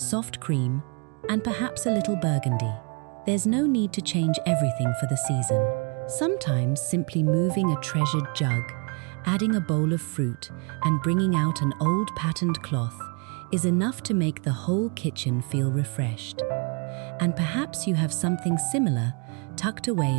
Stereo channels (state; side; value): quieter; left; 35.0 dB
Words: cream, and perhaps a little burgundy. There's no need to change everything for the season. Sometimes simply moving a treasured jug, adding a bowl of fruit, and bringing out an old patterned cloth is enough to make the whole kitchen feel refreshed. And perhaps you have something similar tucked away